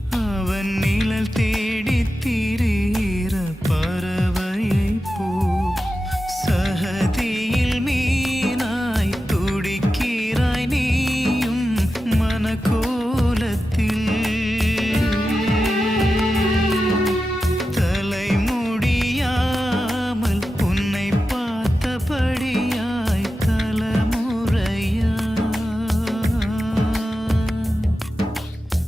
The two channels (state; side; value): normal; both; correlation 0.92